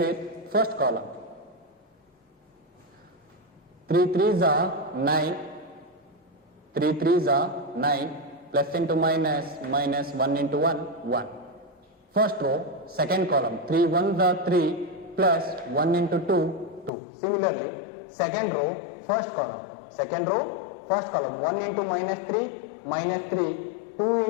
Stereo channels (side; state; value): right; drops out; at 16.9 s